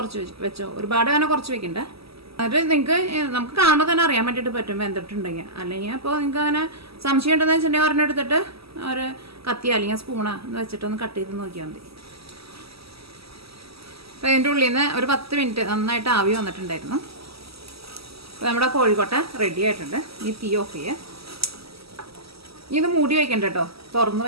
വെച്ചോ, ഒരുപാട് അങ്ങനെ കുറച്ച് വെക്കണ്ട. എന്നിട്ട് നമുക്ക് കാണുമ്പോൾ തന്നെ അറിയാൻ വേണ്ടിയിട്ട് പറ്റും വെന്തിട്ടുണ്ടെങ്കിൽ. അല്ലെങ്കിൽ അപ്പോൾ നിങ്ങൾക്ക് അങ്ങനെ സംശയം ഉണ്ടെന്ന് വെച്ചിട്ടുണ്ടെങ്കിൽ ഒരെണ്ണം എടുത്തിട്ട് ഒരു കത്തി അല്ലെങ്കിൽ സ്പൂണോ എന്ന് വെച്ചിട്ടൊന്ന് കട്ട് ചെയ്ത് നോക്കിയാൽ മതി. അപ്പോൾ ഇതിൻ്റെ ഉള്ളിൽ നിന്ന് ഒരു 10 മിനിറ്റ് നന്നായിട്ട് ആവി വന്നിട്ടുണ്ടായിരുന്നു. അപ്പോൾ നമ്മുടെ കോഴിക്കോട്ട റെഡി ആയിട്ടുണ്ട്. ഈ തീ ഓഫ് ചെയ്യുക. ഇത് മൂടി വയ്ക്കണ്ട കേട്ടോ, തുറന്ന്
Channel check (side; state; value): left; late; 0.76 ms